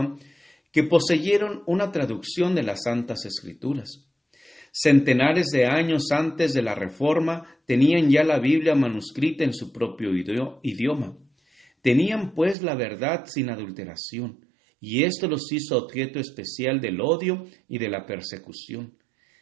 que poseyeron una traducción de las Santas Escrituras. Centenares de años antes de la Reforma tenían ya la Biblia manuscrita en su propio idioma. Tenían pues la verdad sin adulteración, y esto los hizo objeto especial del odio y de la persecución.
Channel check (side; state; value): left; drops out; at 12.6 s